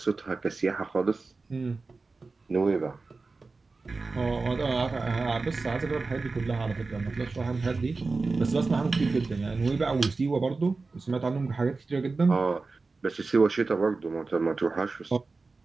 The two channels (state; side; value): quieter; left; 3.9 dB